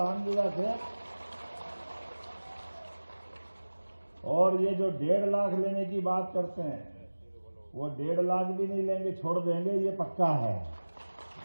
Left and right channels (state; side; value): inverted; both; correlation -1.00